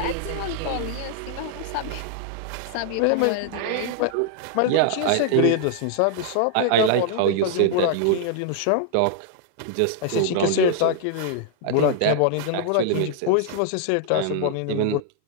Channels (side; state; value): both; different; correlation -0.01